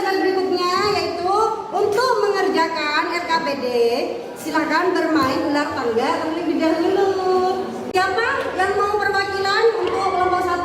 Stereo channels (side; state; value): both; identical; correlation 1.00